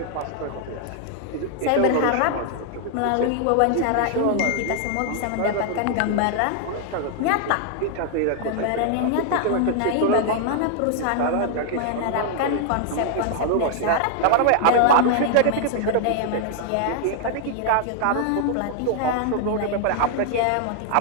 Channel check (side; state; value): both; different; correlation 0.00